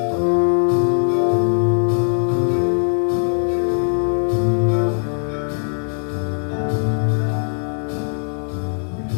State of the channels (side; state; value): right; silent; 59 dB below the other